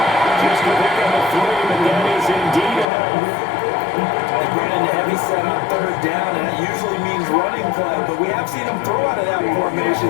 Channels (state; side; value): drops out; right; at 2.9 s